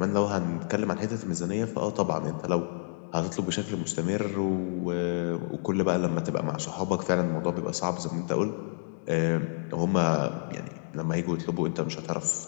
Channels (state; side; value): silent; right; digital silence